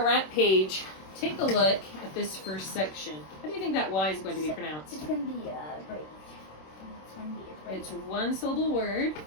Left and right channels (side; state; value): right; late; 26 ms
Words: rap page. Take a look at this first section. How do you think that Y is going to be pronounced? It's going to be a break. It's 1-syllable word.